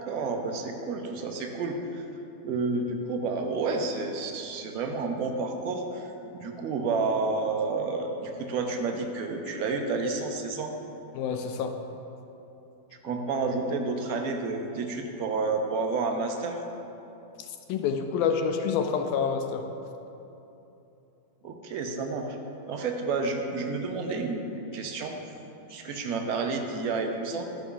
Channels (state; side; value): late; right; 12 ms